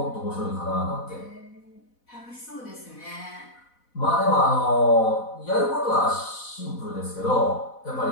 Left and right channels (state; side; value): late; right; 4.1 ms